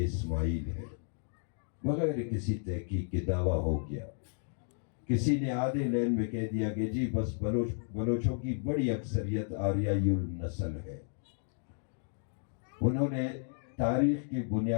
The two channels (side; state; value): right; silent; digital silence